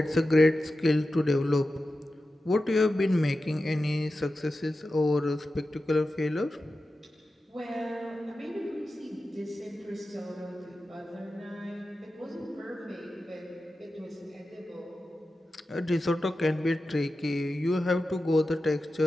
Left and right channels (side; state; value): both; normal; correlation 0.93